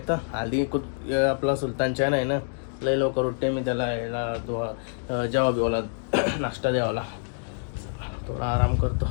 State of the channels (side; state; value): right; silent; digital silence